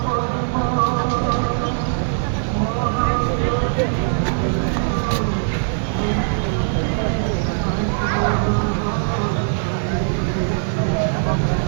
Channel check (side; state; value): left; silent; 62 dB below the other